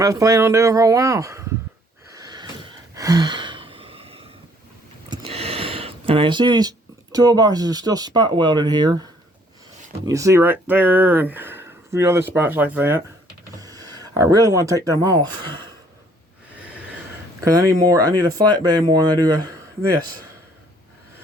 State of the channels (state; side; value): normal; both; correlation 0.62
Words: I was planning on doing for a while. And I see these toolboxes are still spot welded here. You see right there and a few other spots like that. I really want to take them off. Because I need a flatbed more than I do this.